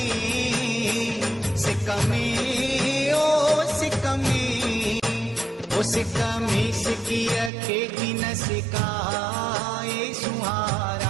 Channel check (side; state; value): left; drops out; at 7.5 s